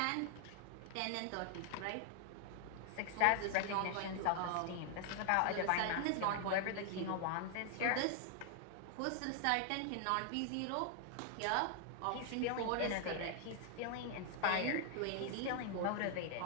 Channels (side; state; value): both; different; correlation 0.00